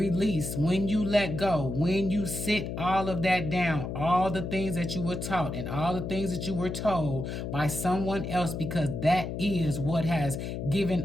when you let go, when you sit all of that down, all the things that you were taught and all the things that you were told by someone else, because that is what has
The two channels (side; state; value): left; noise; hum, 5 dB below the sound